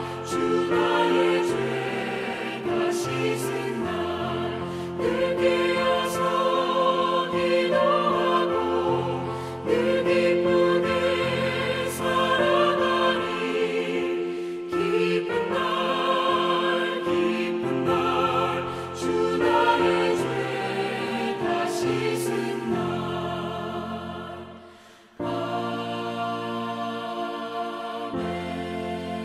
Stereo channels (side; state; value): both; identical; correlation 1.00